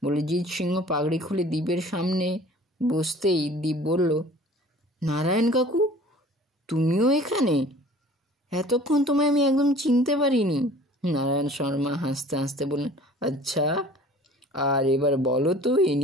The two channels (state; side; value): normal; both; correlation 0.48